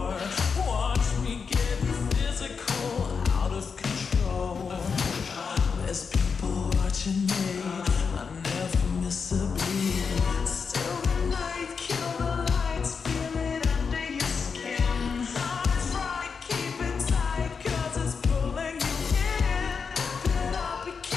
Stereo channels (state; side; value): quieter; right; 5.6 dB